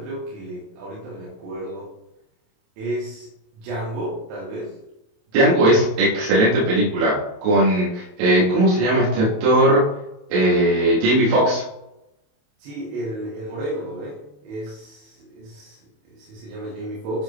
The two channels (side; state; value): left; late; 28 ms